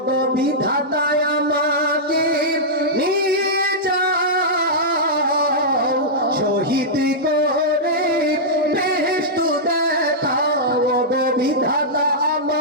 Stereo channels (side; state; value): both; normal; correlation -0.11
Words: গো বিধাতায় আমাকে নিয়ে যাও, শহীদ করে বেহেশত দেখাও। ও গো বিধাতা